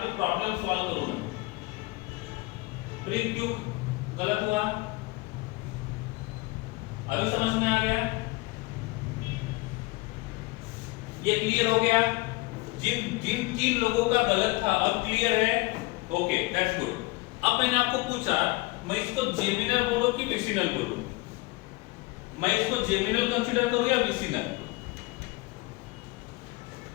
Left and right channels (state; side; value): quieter; right; 23.1 dB